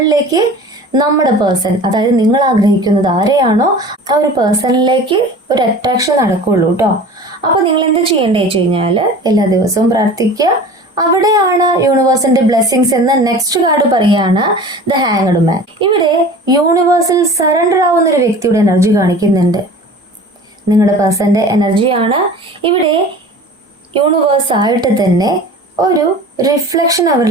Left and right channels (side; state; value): both; normal; correlation 0.40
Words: നമ്മുടെ പേഴ്സൺ, അതായത് നിങ്ങൾ ആഗ്രഹിക്കുന്നത് ആരെയാണോ ആ ഒരു പേഴ്സണിലേക്ക് ഒരു അട്രാക്ഷൻ നടക്കുള്ളൂ കേട്ടോ. അപ്പൊ നിങ്ങൾ എന്ത് ചെയ്യേണ്ടത് വെച്ച് കഴിഞ്ഞാല് എല്ലാ ദിവസവും പ്രാർത്ഥിക്കുക. അവിടെയാണ് യൂണിവേഴ്സിന്റെ ബ്ലെസ്സിങ്സ് എന്ന നെക്സ്റ്റ് കാർഡ് പറയാണ് ദ ഹാങ്ഡ് മാൻ. ഇവിടെ യൂണിവേഴ്സിൽ സറണ്ടർ ആവുന്ന ഒരു വ്യക്തിയുടെ എനർജി കാണിക്കുന്നുണ്ട്. നിങ്ങളുടെ പേഴ്സന്റെ എനർജിയാണ്. ഇവിടെ യൂണിവേഴ്സ് ആയിട്ട് തന്നെ ഒരു റിഫ്ലക്ഷൻ